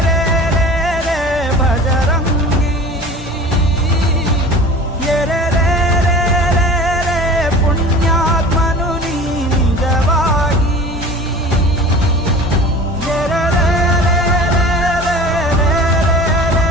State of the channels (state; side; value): normal; both; correlation 0.40